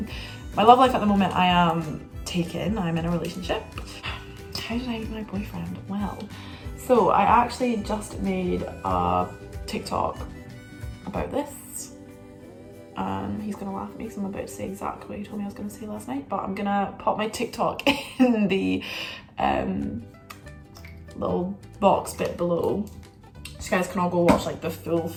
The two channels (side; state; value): both; identical; correlation 1.00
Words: My love life at the moment, I am taken, I'm in a relationship. How did I meet my boyfriend? Well, so I actually just made a TikTok about this. and he's gonna laugh at me because I'm about to say exactly what he told me I was gonna say last night, but I'm gonna pop my TikTok in the little box bit below, so you guys can all go watch like the